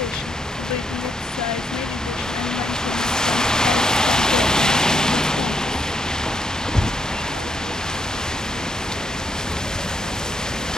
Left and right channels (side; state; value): both; normal; correlation 0.76